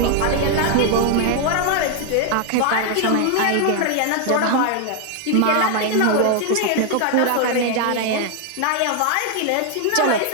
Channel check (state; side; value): different; both; correlation 0.00